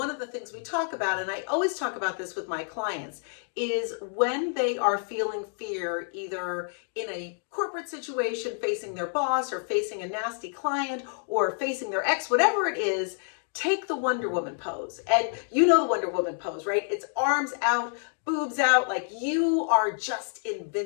of the things we talk about, and I always talk about this with my clients, is when they are feeling fear, either in a corporate situation facing their boss or facing a nasty client or facing their ex, whatever it is, take the Wonder Woman pose. And you know the Wonder Woman pose, right? It's arms out, boobs out, like you are just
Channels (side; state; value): right; silent; 56 dB below the other